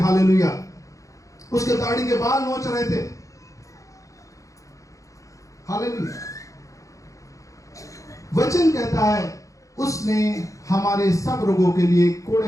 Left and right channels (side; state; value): right; late; 0.16 ms